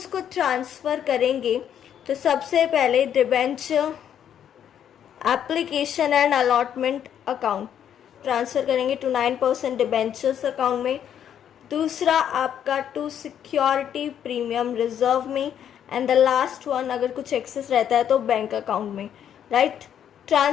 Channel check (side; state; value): right; quieter; 9.4 dB